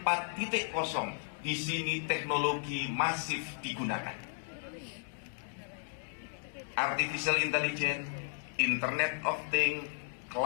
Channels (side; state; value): right; silent; digital silence